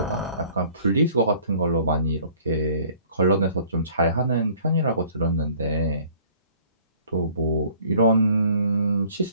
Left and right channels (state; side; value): inverted; both; correlation -0.55